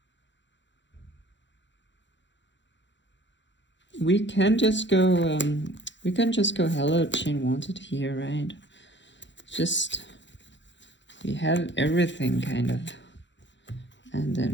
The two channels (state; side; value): late; right; 0.53 ms